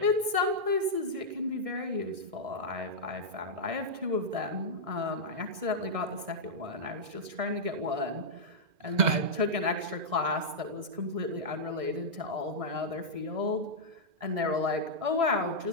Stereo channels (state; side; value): late; left; 1.6 ms